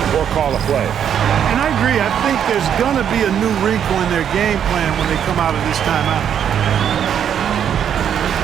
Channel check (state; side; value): quieter; left; 8.8 dB